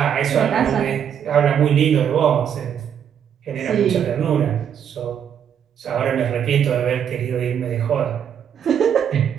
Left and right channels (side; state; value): left; quieter; 8.6 dB